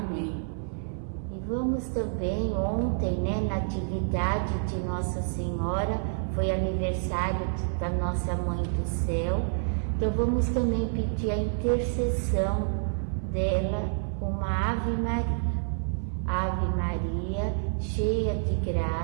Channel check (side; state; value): left; silent; 59 dB below the other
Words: E vamos também, ontem, na atividade de Nossa Senhora, foi aniversário da nossa Mãe do Céu, então vamos também pedir a intercessão dela, uma Ave Maria. Ave Maria, cheia de